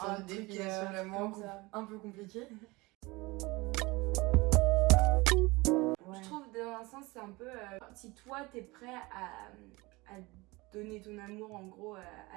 de définition de l'amour un peu compliquée. Je trouve dans un sens c'est un peu si toi t'es prêt à donner ton amour en gros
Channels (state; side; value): quieter; left; 23.2 dB